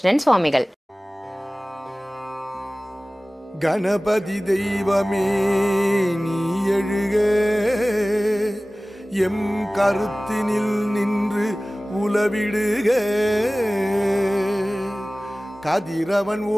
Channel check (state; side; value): normal; both; correlation 0.98